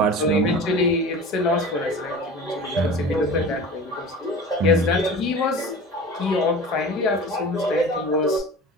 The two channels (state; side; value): normal; both; correlation 0.36